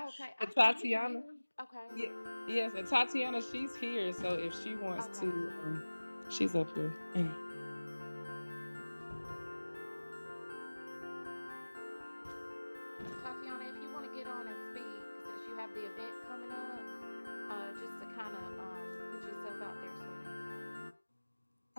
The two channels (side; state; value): both; inverted; correlation -1.00